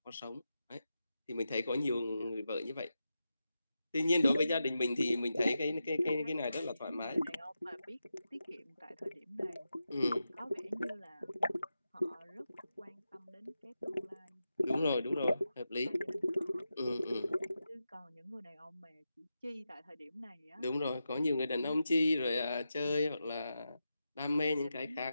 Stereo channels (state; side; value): inverted; both; correlation -0.89